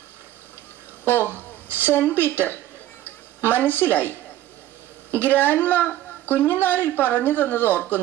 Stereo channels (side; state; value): left; quieter; 13.8 dB